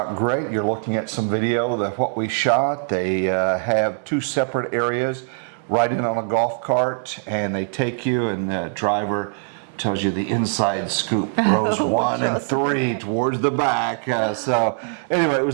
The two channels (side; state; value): left; silent; 64 dB below the other